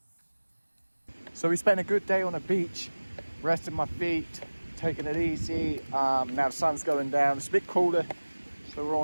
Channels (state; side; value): inverted; both; correlation -1.00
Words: So we spent a good day on the beach, resting my feet, taking it easy. Now the sun's going down, it's a bit cooler, so we're